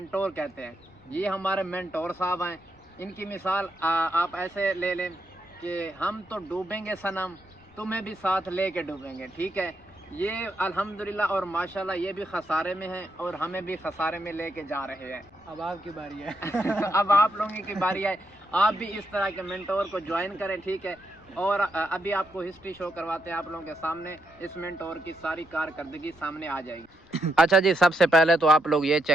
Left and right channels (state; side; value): noise; left; rumble, 28 dB below the sound